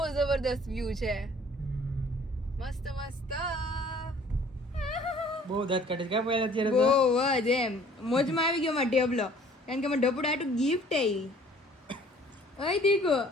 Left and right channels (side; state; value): both; normal; correlation 0.54